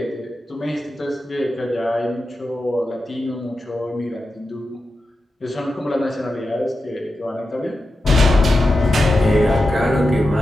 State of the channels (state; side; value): normal; both; correlation 0.90